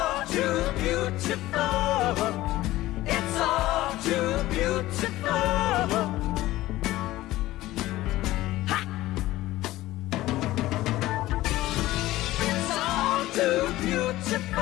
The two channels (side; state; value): right; quieter; 16.6 dB